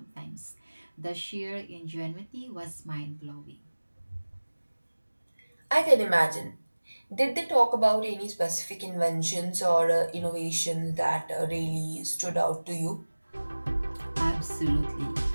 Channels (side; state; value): both; inverted; correlation -1.00